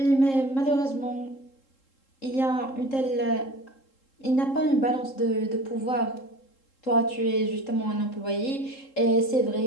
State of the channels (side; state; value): right; late; 3.7 ms